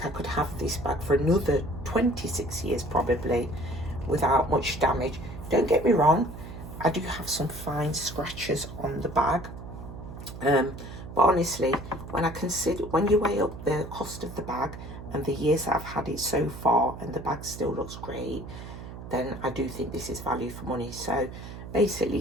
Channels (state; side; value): noise; right; hum, 12 dB below the sound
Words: I could have this bag for another 26 years probably without much damage. Don't get me wrong, I do have some fine scratches on the bag, but honestly, when you weigh up the cost of the bag and the years that I've had it so far, and the bag still looks great, then I do think this is value for money. So